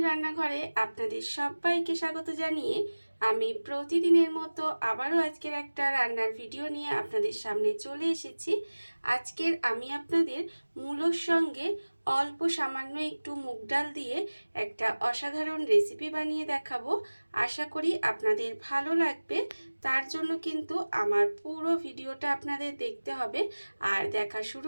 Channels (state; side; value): inverted; both; correlation -1.00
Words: আপনাদের সবাইকে স্বাগত জানিয়ে আমি প্রতিদিনের মতো আবারও আজকের একটা রান্নার ভিডিও নিয়ে আপনাদের সামনে চলে এসেছি। আজকের আমি আপনাদের মূলোর সঙ্গে অল্প সামান্য একটু মুগ ডাল দিয়ে একটা অসাধারণ রেসিপি বানিয়ে দেখাবো। আশা করি আপনাদের ভালো লাগবে। তার জন্য কিন্তু আমার পুরো ভিডিওটা আপনাদের দেখতে হবে। আর দেখা শুরু